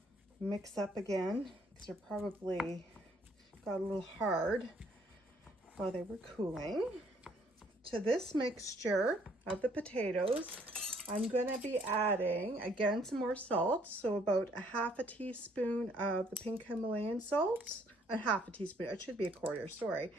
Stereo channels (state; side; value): normal; both; correlation 0.64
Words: mix up again, because they're probably got a little hard while they were cooling. To this mixture of the potatoes, I'm going to be adding again some more salt, so about a 1/2 teaspoon of the pink Himalayan salt, a 1/2 teaspoon, it should be a 1/4, sorry,